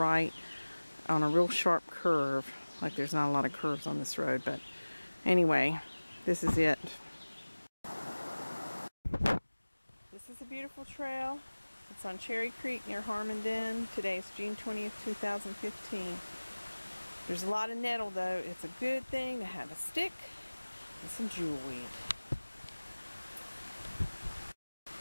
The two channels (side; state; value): both; inverted; correlation -1.00